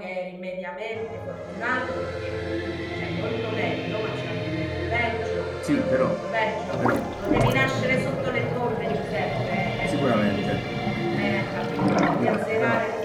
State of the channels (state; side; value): identical; both; correlation 1.00